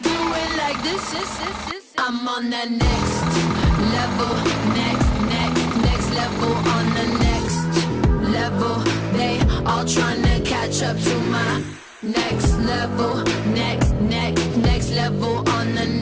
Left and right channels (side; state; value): both; identical; correlation 1.00